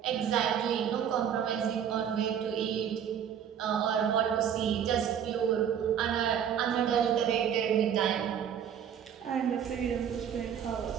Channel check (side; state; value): left; quieter; 8.7 dB